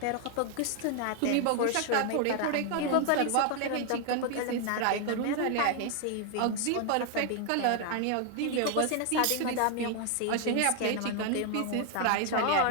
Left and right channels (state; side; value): different; both; correlation 0.00